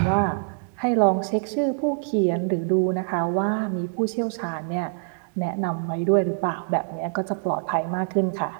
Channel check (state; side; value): silent; left; digital silence